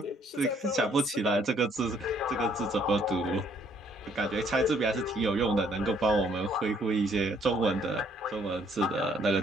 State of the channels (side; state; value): both; normal; correlation 0.65